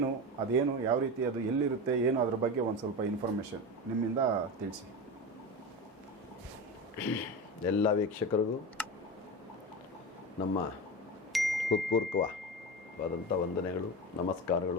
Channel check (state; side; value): normal; both; correlation 0.23